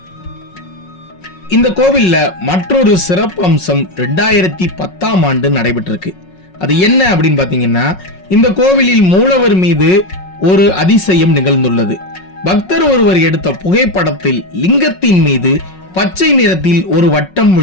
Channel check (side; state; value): right; late; 5.4 ms